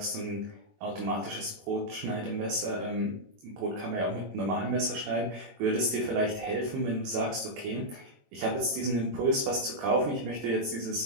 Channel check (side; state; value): left; late; 21 ms